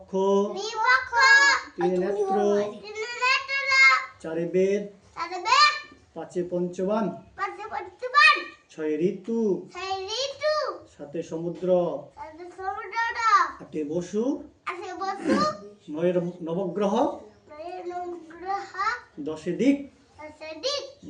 দুই পক্ষ তিনে নেত্র তিনে নেত্র চারে বেদ চারে বেদ পাঁচে পঞ্চবান পাঁচে পঞ্চবান ছয়ে ঋতু ছয় ঋতু সাতে সমুদ্র সাতে সমুদ্র আটে বসু আছে বসু নয়ে নবগ্রহ নয় গ্রহ দশে দিক দশে দিক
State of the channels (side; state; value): both; identical; correlation 1.00